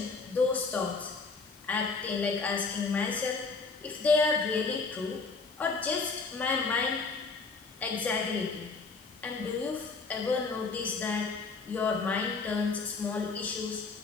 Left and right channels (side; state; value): right; quieter; 4.4 dB